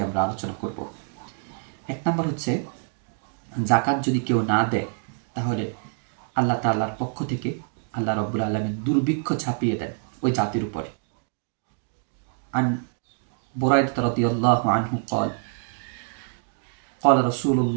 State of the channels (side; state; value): left; silent; 60 dB below the other